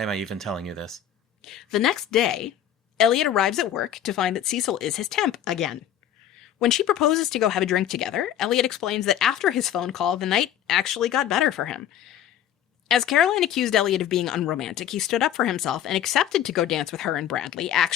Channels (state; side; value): quieter; right; 10.4 dB